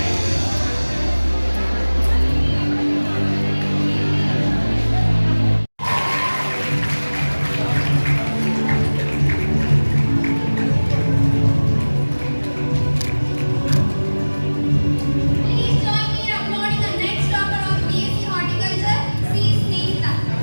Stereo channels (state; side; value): inverted; both; correlation -1.00